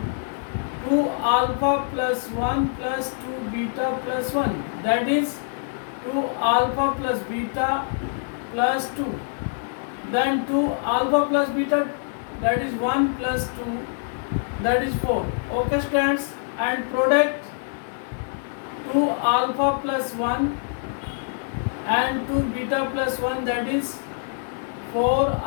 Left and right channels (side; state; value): right; silent; 62 dB below the other